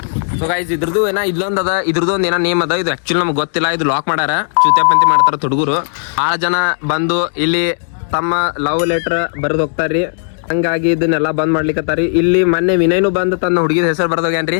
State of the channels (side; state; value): right; silent; digital silence